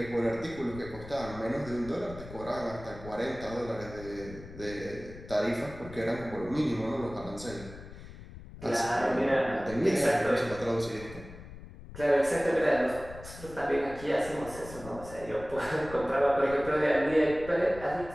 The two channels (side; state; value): left; noise; rumble, 15 dB below the sound